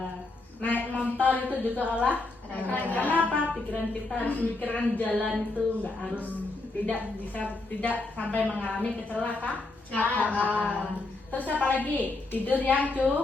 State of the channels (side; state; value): right; quieter; 3.2 dB